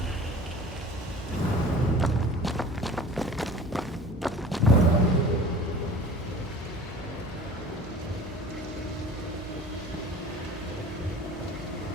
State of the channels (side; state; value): both; normal; correlation 0.42